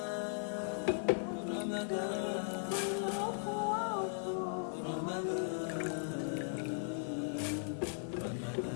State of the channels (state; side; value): silent; right; 52 dB below the other